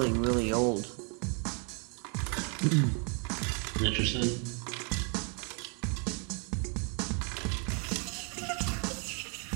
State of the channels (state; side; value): quieter; left; 37.6 dB